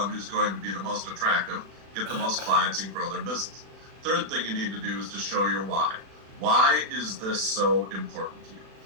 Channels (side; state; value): left; late; 36 ms